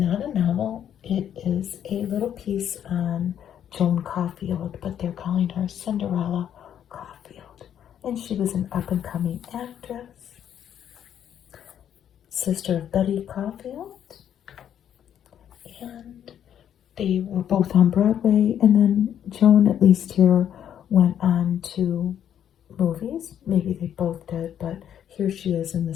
a novel. It is a little piece on Joan Caulfield, but they're calling her Cinderella Caulfield. And she was an up-and-coming actress, sister of Betty Caulfield. And they were both on Broadway. And then Joan, at least here, went on to movies. Maybe they both did, but here she is in the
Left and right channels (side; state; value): right; quieter; 9.7 dB